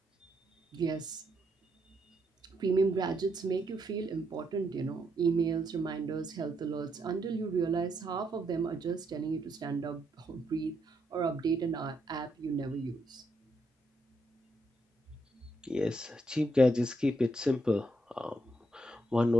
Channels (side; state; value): both; normal; correlation 0.78